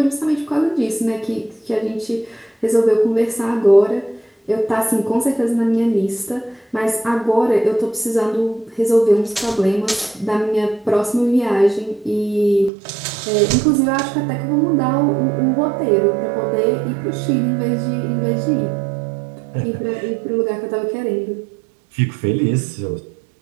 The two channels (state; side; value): drops out; left; at 12.7 s